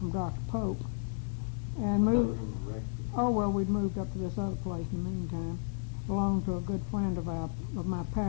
Dr. Pope. And move. Oh, well, we'd moved up to this other place in the meantime. Belonged to a good friend of my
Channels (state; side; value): silent; right; digital silence